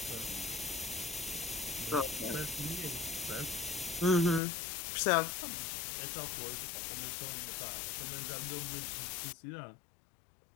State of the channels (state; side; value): drops out; right; at 4.4 s